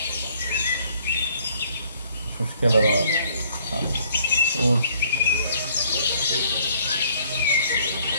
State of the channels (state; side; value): inverted; both; correlation -0.62